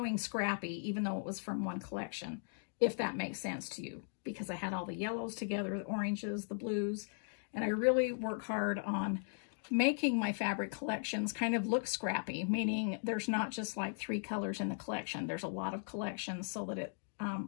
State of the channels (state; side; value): silent; right; digital silence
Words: Scrappy, even though it was from one collection, if that makes sense to you, because I had all the yellows together, the oranges, the blues, and I really work hard on making my fabric collections kind of look scrappy, meaning there's not just like 3 colors in the collection. There's a lot of collections so that